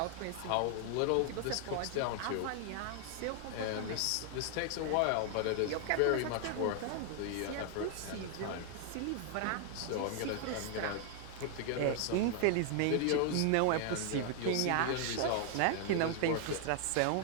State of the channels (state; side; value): different; both; correlation 0.00